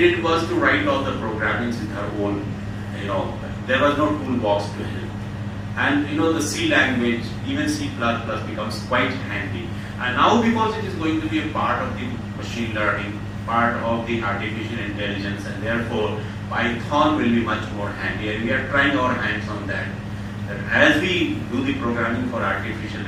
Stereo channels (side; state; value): both; identical; correlation 1.00